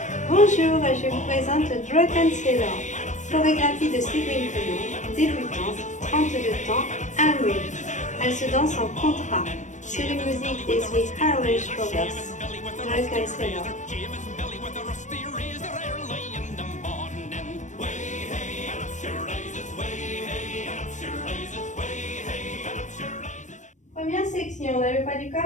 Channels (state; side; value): late; right; 0.35 ms